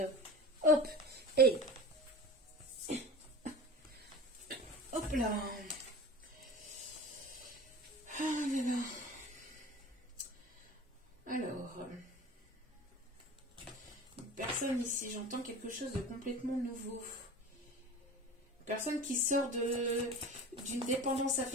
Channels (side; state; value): both; normal; correlation 0.36